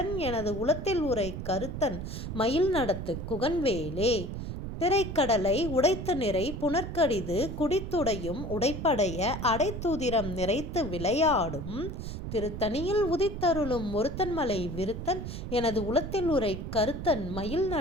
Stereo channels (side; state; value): right; noise; rumble, 6 dB below the sound